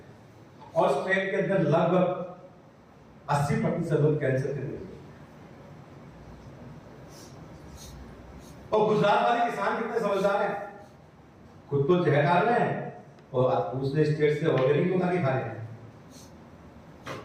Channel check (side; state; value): both; identical; correlation 1.00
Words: और उस ट्रेन के अंदर लगभग 80% लोग कैंसर के मरीज। और गुजरात वाले किसान कितने समझदार हैं, खुद तो जहर डाल रहे हैं और दूसरे स्टेट से ऑर्गेनिक मंगा के खा रहे हैं।